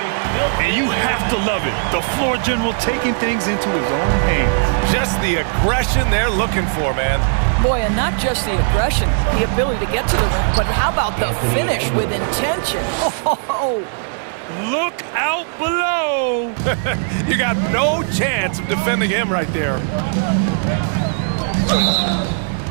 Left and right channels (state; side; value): silent; left; 67 dB below the other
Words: And you have to love it. The floor general taking things into his own hands. Just the aggression they're looking for, man. Boy, and not just the aggression, the ability to get to the rim, but how about the finish with intention? Oh, look out below! You got no chance of defending him right there.